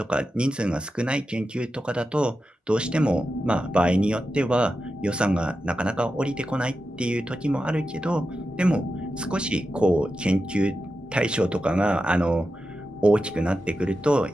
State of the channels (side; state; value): both; normal; correlation 0.90